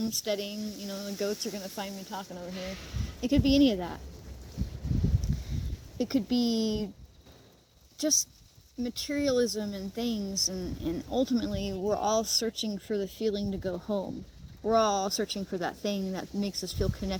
You know, the goats are going to find me talking over here. It could be any of that. It could be just materialism and things, and ultimately we're all searching for the feeling to go home. We're all searching for that thing that makes us feel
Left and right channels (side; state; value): both; identical; correlation 1.00